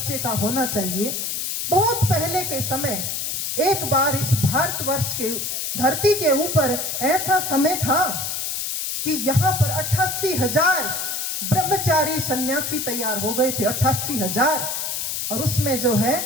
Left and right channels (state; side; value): noise; left; hiss, 2 dB below the sound